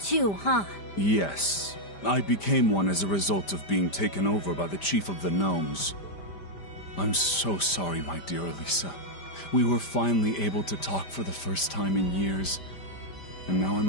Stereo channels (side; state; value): right; late; 5.0 ms